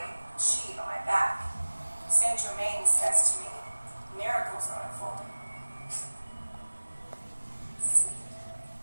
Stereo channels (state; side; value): inverted; both; correlation -1.00